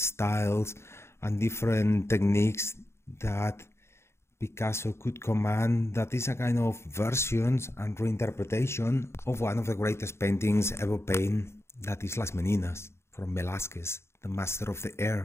and different techniques that Picasso could command. That is a kind of versions and reinterpretation of one of the greatest paintings ever painted, that is Las Meninas from Velázquez, the master of the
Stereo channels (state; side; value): late; right; 0.13 ms